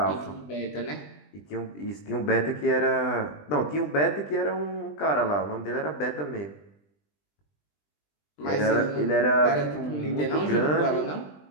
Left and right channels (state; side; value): late; right; 20 ms